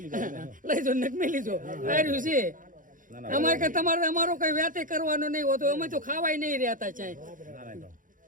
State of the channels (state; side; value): late; left; 0.39 ms